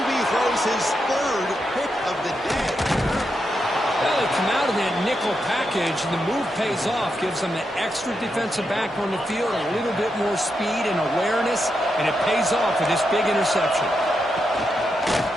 throws his 3rd pick of the day. Well, they come out of that nickel package, and the move pays off, gives them an extra defensive back on the field, a little bit more speed and awareness, and it pays off with this big interception.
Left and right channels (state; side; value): normal; both; correlation 0.85